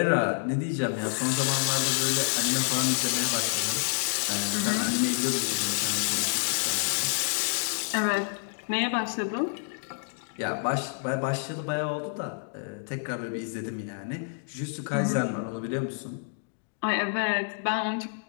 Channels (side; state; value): right; silent; digital silence